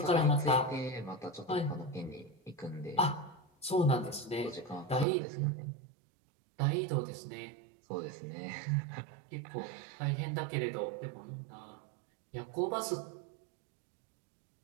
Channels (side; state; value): left; drops out; at 5.1 s